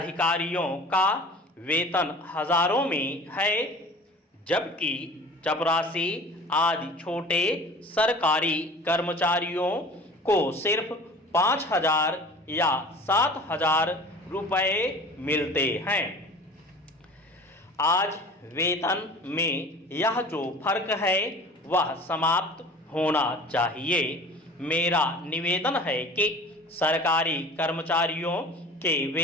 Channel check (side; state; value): both; normal; correlation 0.42